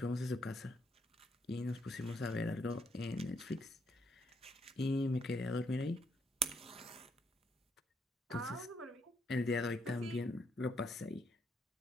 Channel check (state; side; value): normal; both; correlation 0.73